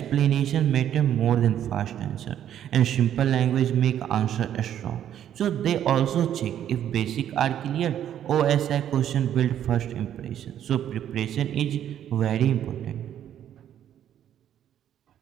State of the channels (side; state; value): left; quieter; 10.5 dB